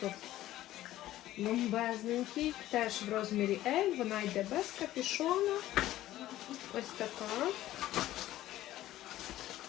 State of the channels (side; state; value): right; quieter; 14.5 dB